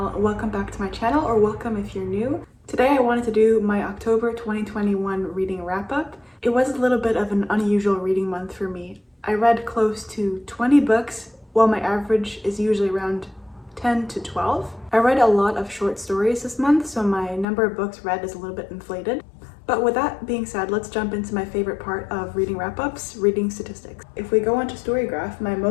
Welcome back to my channel, or welcome if you're new. Today I wanted to do my October 2021 reading wrap-up. It was a little bit of an unusual reading month for me. I read close to 20 books, while my average is usually around 10 to 12. I read a lot of short stories this month, so my number of books read is a little bit inflated. But with that being said, let's jump into my favorite part of reading wrap-ups, reading statistics. If we go onto Storygraph, my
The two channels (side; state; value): right; drops out; at 17.4 s